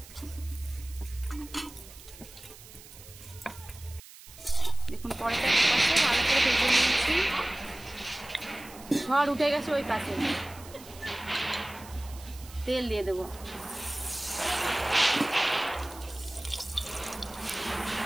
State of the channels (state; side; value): noise; right; hiss, 18 dB below the sound